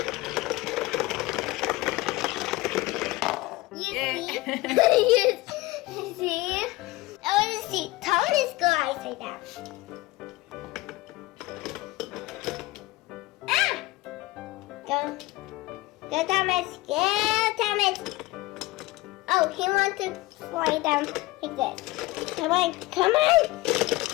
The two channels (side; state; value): right; quieter; 19.8 dB